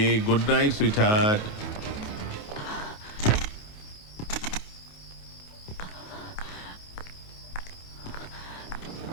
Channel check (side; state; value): right; late; 18 ms